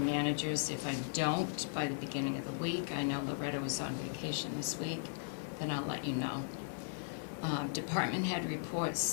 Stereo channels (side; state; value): right; silent; digital silence